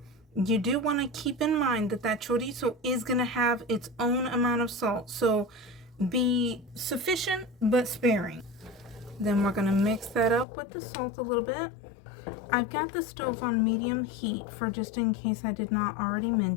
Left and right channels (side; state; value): right; drops out; at 10.5 s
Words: You do want to keep in mind that that chorizo is going to have its own amount of salt, so be sufficient but sparing. Then we're going to mix that up with the salt a little bit. I've got the stove on medium heat for just in case I did not already